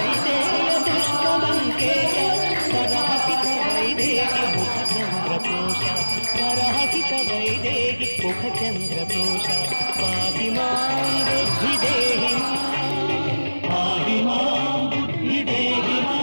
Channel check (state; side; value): inverted; both; correlation -1.00